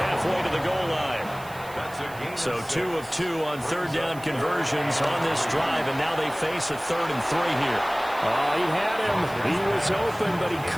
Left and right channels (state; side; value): noise; right; hiss, 20 dB below the sound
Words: to the goal line. So 2 of 2 on 3rd down conversions on this drive, and now they face a 3rd and 3 here. He had him. He was open, but he